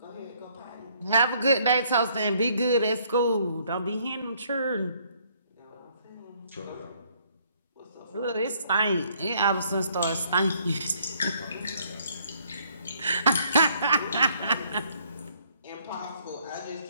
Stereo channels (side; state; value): both; inverted; correlation -0.65